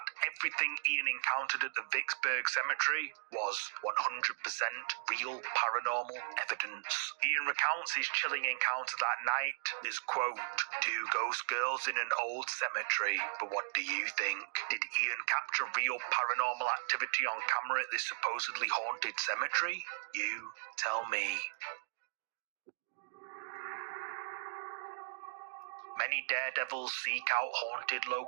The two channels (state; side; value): silent; left; digital silence